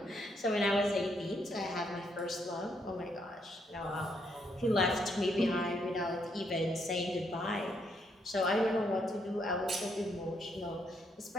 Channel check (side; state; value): both; normal; correlation 0.75